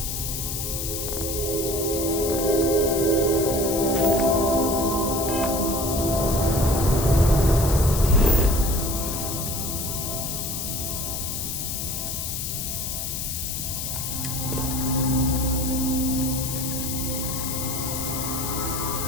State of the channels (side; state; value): left; noise; hiss, 4 dB below the sound